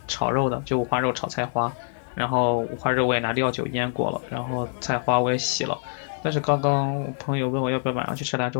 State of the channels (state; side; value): silent; right; digital silence